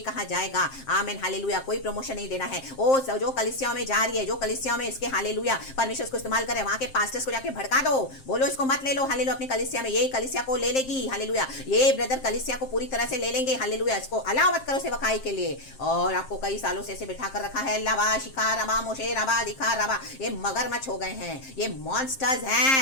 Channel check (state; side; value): late; right; 7.6 ms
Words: जाएगा। आमीन, हालेलुया, कोई प्रमोशन नहीं देना है। ओ जो कलीसिया में जा रही है, जो कलीसिया में इसके, हालेलुया, परमेश्वर को इस्तेमाल करे, वहां के पास्टर्स को जाके भड़का दो, बोलो इसको मत ले लो। हालेलुया, अपनी कलीसिया में, ये कलीसिया को ले लेगी। हालेलुया, ये ब्रदर कलीसिया को पूरी तरह से ले लेंगे। हालेलुया, इसको अलाउ मत करो सेवकाई के लिए। और आपको कई सालों से ऐसे बिठा कर रखा है। लवा शिखा रवा मोशे रवा दिखा रवा, ये मगरमच्छ हो गए हैं, ये मॉन्स्टर्स